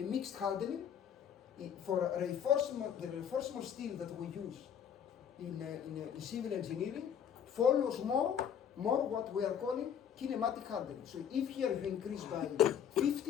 mixed hardening. For the reinforcement steel that we use in civil engineering follows more what we are calling kinematic hardening. So if here you increase by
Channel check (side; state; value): right; quieter; 8.6 dB